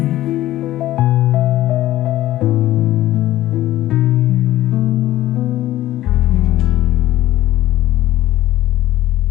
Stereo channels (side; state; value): right; quieter; 14.8 dB